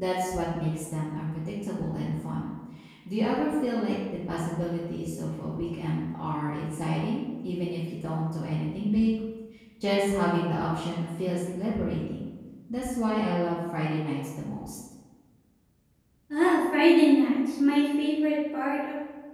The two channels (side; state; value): both; identical; correlation 1.00